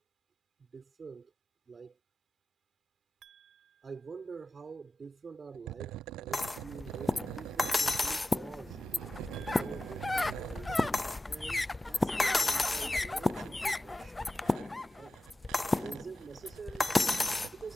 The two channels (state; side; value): normal; both; correlation 0.95